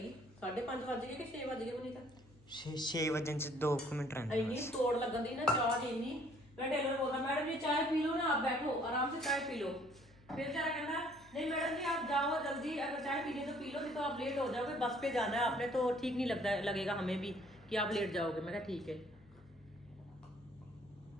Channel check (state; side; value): noise; left; hum, 26 dB below the sound